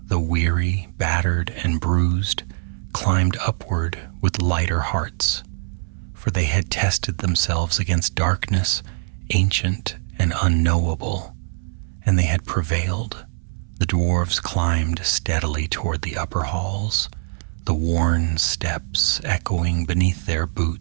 though weary, battered, and bruised, climbed upward with lighter hearts, for they had tested themselves against darkness, ancient and unknowable, and they had prevailed. The dwarves climbed steadily toward the upper halls, the worn steps echoing beneath their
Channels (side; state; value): left; silent; 64 dB below the other